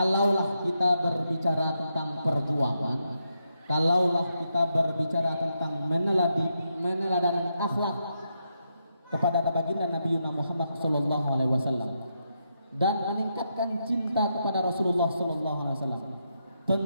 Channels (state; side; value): inverted; both; correlation -0.82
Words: kita berbicara tentang perjuangan, kalaulah kita berbicara tentang meneladani akhlak kepada baginda Nabi Muhammad sallallahu alaihi wasallam dan meningkatkan cinta kepada Rasulullah sallallahu alaihi wasallam,